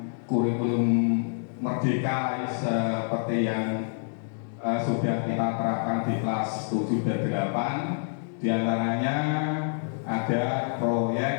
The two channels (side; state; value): right; silent; digital silence